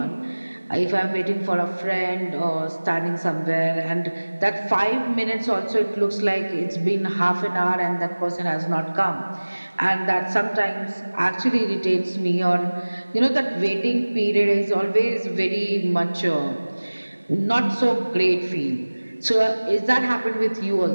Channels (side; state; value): both; inverted; correlation -1.00